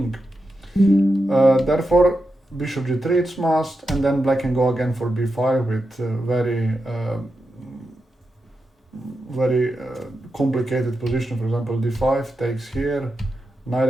Therefore, bishop g3 it's must, and then black can go again for b5 with very complicated position. For example, d5 takes here, knight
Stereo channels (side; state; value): both; normal; correlation 0.88